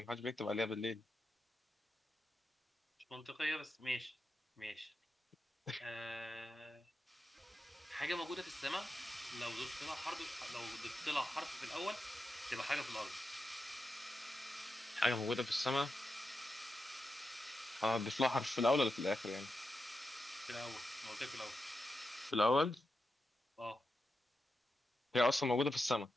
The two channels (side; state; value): both; normal; correlation 0.89